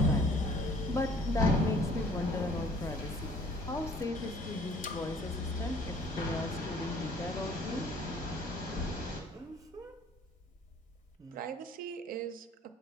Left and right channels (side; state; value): both; normal; correlation 0.55